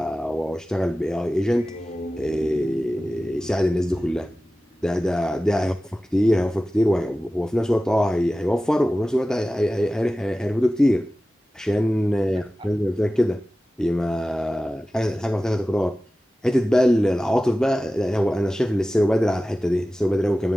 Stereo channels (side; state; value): both; normal; correlation 0.96